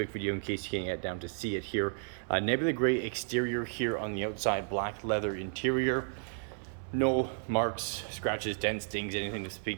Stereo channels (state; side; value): silent; left; 56 dB below the other